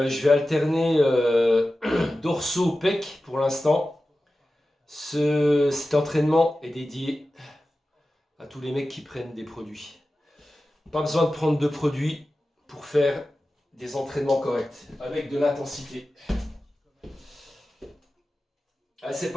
vais alterner dorsaux pec pour l'instant. Cet entraînement est dédié à tous les mecs qui prennent des produits. Pas besoin de prendre de produits pour faire des entraînements corrects avec de l'intensité. Allez, c'est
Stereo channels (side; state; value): both; normal; correlation 0.94